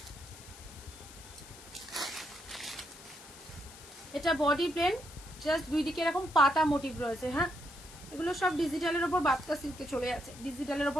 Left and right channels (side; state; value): left; noise; hiss, 17 dB below the sound